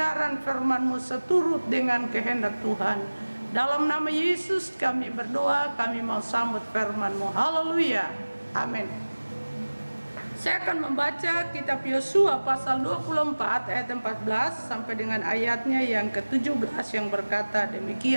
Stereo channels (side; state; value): both; inverted; correlation -1.00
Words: firman-Mu seturut dengan kehendak Tuhan. Dalam nama Yesus kami berdoa, kami mau sambut firman-Mu. Haleluya, amin. Saya akan membaca kitab Yosua pasal 24 ayat 14 sampai dengan ayatnya yang ke-17 yang berkata